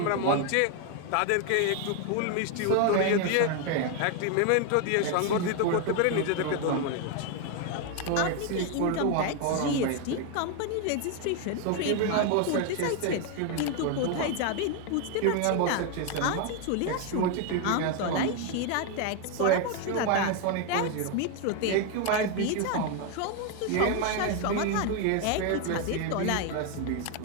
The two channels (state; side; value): different; both; correlation 0.01